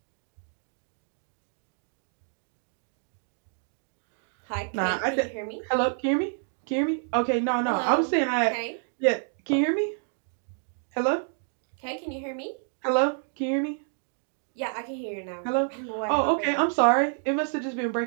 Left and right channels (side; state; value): left; silent; 58 dB below the other